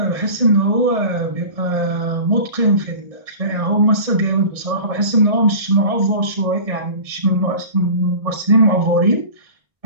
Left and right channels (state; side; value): late; left; 1.4 ms